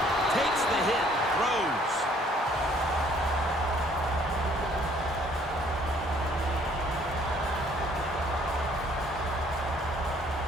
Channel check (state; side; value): normal; both; correlation 0.61